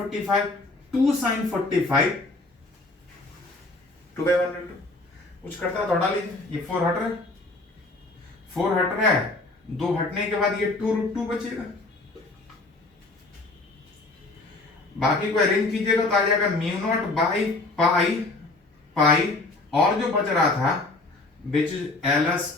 2 sin 45 2/1 कुछ करता है तो हटा लीजिए। ये 4 हट रहा है, 4 हट रहा है, 2 हटने के बाद ये 2√2 बचेगा। बाकी को अरेंज कीजिएगा तो आ जाएगा μ0/π, और जो बच रहा था विच इज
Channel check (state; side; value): quieter; right; 3.1 dB